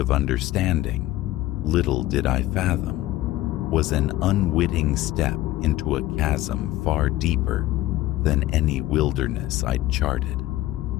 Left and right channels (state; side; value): quieter; right; 15.9 dB